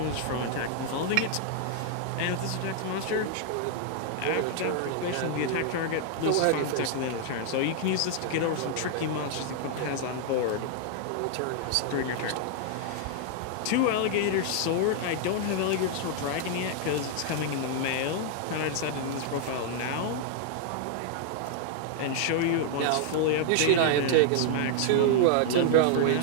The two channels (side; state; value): both; different; correlation -0.01